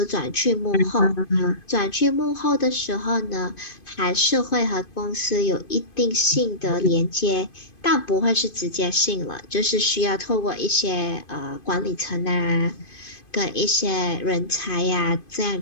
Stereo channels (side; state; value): right; late; 2.5 ms